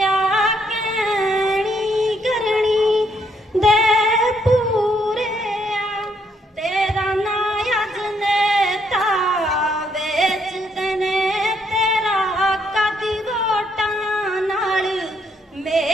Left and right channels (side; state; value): both; normal; correlation 0.72